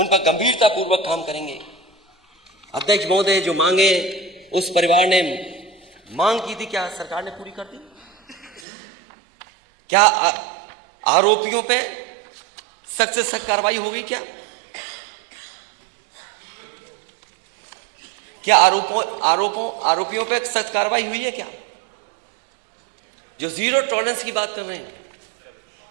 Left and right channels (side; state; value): left; drops out; at 8.6 s